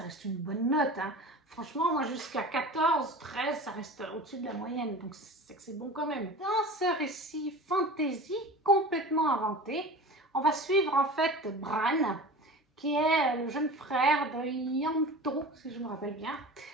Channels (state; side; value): normal; both; correlation 0.35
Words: reste une bonne note. Hein. Franchement, moi, jusqu'à 14, 13, ça reste au-dessus de la moyenne, donc c'est que c'est bon quand même. Dans ce récit fantasy complètement inventé, on va suivre en fait Bran, qui est le jeune frère de Ianto, si je me rappelle bien.